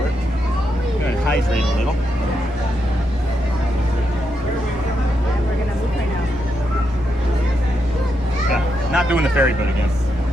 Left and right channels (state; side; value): normal; both; correlation 0.82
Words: I'm going to hydrate a little. Not doing the ferry boat again.